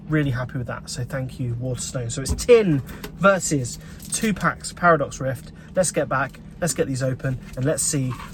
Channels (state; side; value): identical; both; correlation 1.00